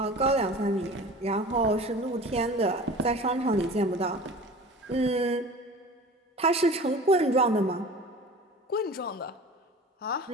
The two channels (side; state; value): both; normal; correlation 0.39